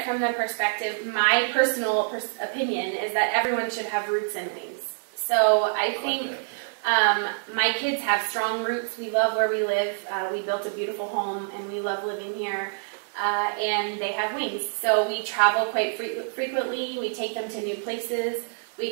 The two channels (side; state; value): left; silent; digital silence